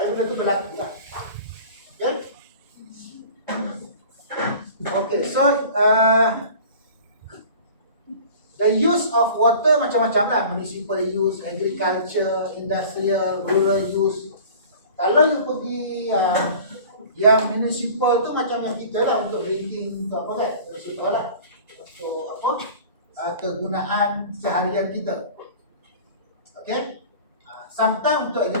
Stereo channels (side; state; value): both; inverted; correlation -0.43